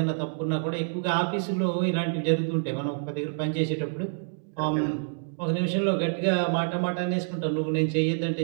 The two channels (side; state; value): left; silent; digital silence